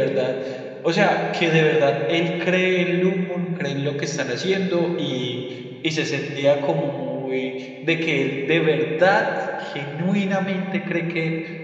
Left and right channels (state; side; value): identical; both; correlation 1.00